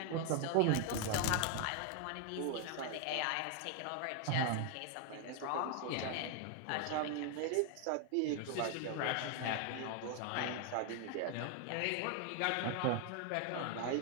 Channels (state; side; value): different; both; correlation 0.00